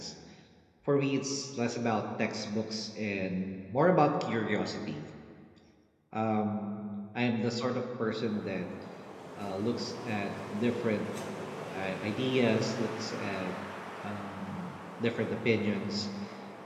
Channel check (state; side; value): identical; both; correlation 1.00